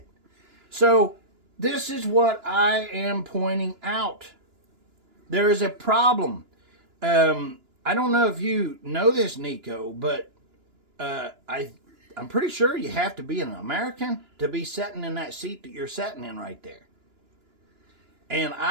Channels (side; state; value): left; late; 2.9 ms